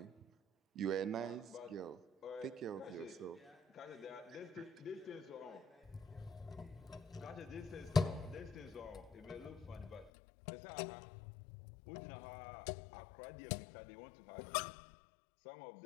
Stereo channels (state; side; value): drops out; right; at 10.1 s